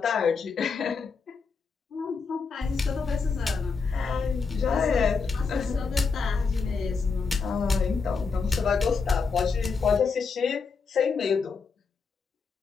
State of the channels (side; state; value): right; quieter; 5.0 dB